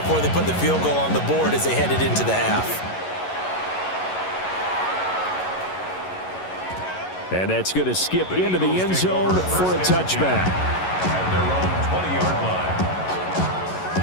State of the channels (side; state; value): right; late; 11 ms